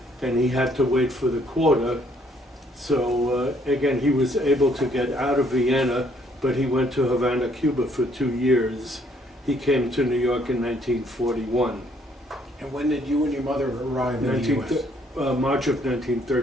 and he had to wait for the quota. So again, he was able to get out of Vienna, but he went to Havana, Cuba for 2 years. He came to New York in 1941. And when did you and your mother arrive in the U.S.? March of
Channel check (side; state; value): both; normal; correlation 0.66